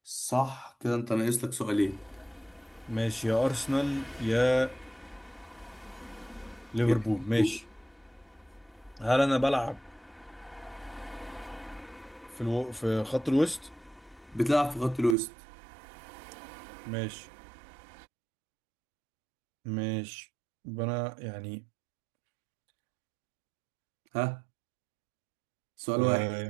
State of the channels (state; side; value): drops out; left; at 15.2 s